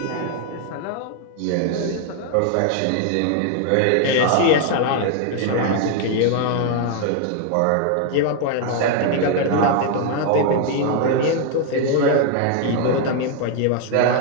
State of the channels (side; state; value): both; different; correlation 0.00